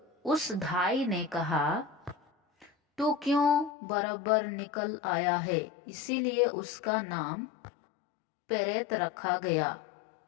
उस धाई ने कहा, तू क्यों बराबर निकल आया है? इसीलिए उसका नाम पेरेत रखा गया।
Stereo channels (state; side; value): drops out; right; at 3.7 s